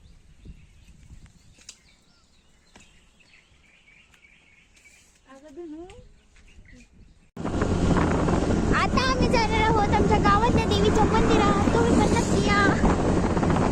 आता आम्ही जाणार आहोत आमच्या गावातल्या देवीच्या मंदिरात. तुम्ही पण नक्की या.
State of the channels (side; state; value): both; identical; correlation 1.00